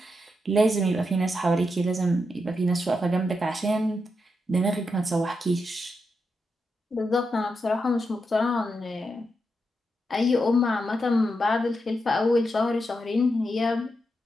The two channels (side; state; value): both; normal; correlation 0.85